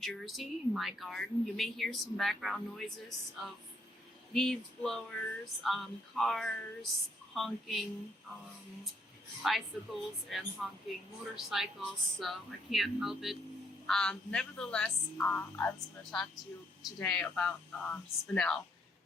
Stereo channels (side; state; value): both; normal; correlation 0.71